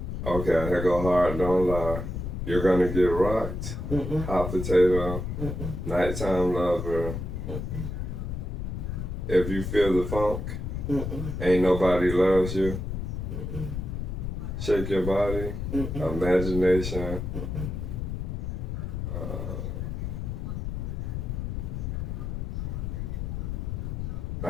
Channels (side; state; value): left; noise; rumble, 4 dB below the sound